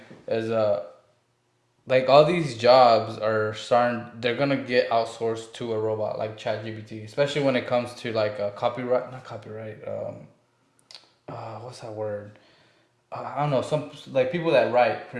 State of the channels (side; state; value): both; identical; correlation 1.00